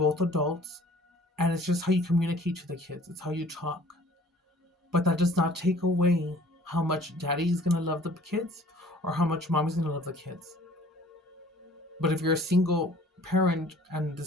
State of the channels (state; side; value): normal; both; correlation 0.52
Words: adults, and it's just how you communicate to the kids. It's how you talk. But that does not take away how much daddy is going to love the kids or how much mommy's going to love the kids. But if you're a single parent and